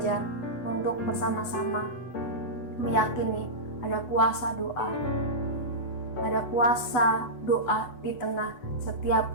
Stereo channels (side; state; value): right; late; 8.0 ms